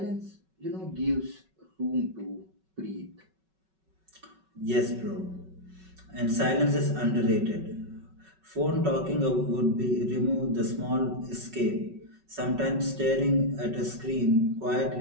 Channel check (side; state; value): left; late; 5.3 ms